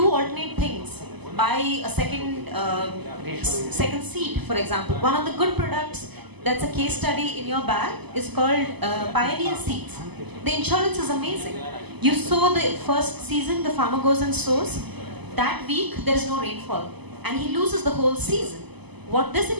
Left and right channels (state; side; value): late; left; 0.99 ms